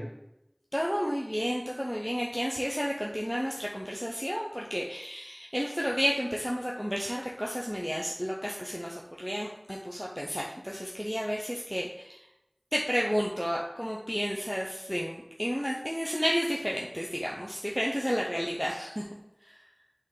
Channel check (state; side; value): identical; both; correlation 1.00